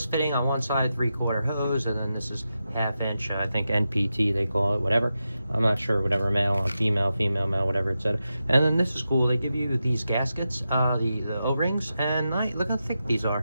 fitting on one side, 3/4 hose, and then this is 1/2 inch, I think NPT they call it, whatever. I'm not sure, whatever, male on female, female, male, whatever it said. And then this is cool. They give you these gaskets, the O-rings, and look how thick these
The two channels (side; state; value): both; inverted; correlation -0.89